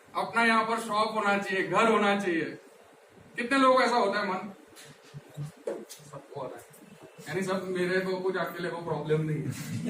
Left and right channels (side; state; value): both; identical; correlation 1.00